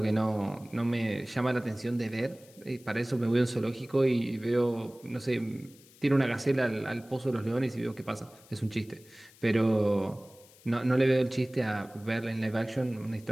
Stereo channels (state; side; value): noise; left; hiss, 25 dB below the sound